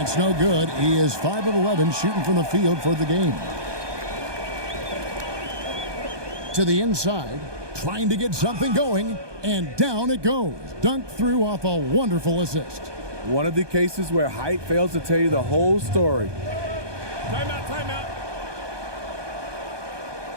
no good. He is 5 of 11 shooting from the field for the game. To the inside, trying to get something going, and down it goes. Dunked through off a wonderful assist. One of the cases where height fails to tell you the whole story. Timeout, timeout.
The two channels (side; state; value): left; late; 1.2 ms